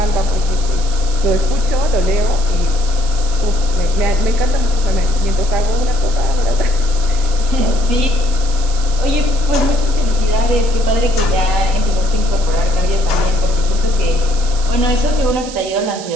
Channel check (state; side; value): noise; right; hiss, 13 dB below the sound